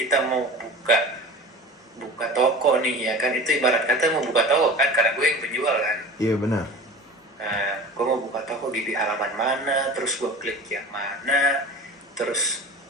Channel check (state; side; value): normal; both; correlation 0.37